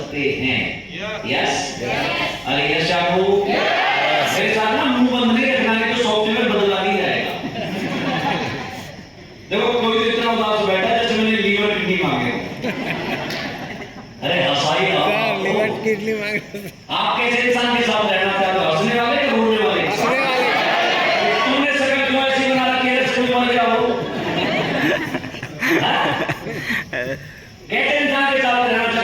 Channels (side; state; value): both; identical; correlation 1.00